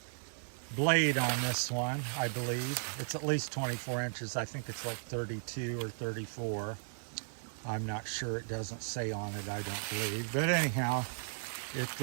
blade on this one, I believe. It's at least 24 inches. I think it's like 32 or 34. I'm not sure. It doesn't say on it, I don't believe. But anyhow,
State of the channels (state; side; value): silent; left; digital silence